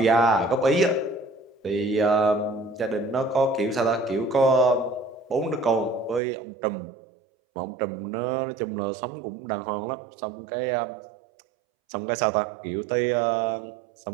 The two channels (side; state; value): left; drops out; at 6.2 s